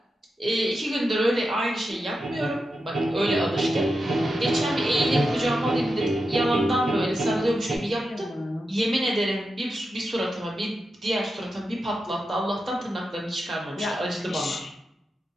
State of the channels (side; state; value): both; normal; correlation 0.89